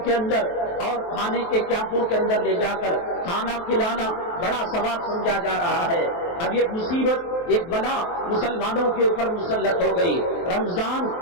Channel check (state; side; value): late; right; 23 ms